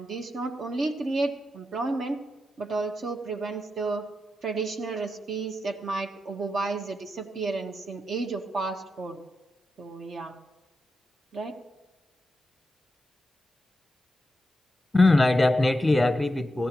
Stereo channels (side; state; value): both; normal; correlation 0.87